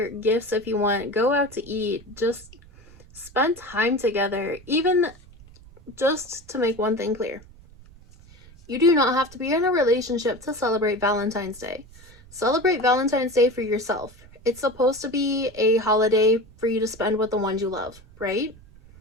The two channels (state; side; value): noise; right; rumble, 23 dB below the sound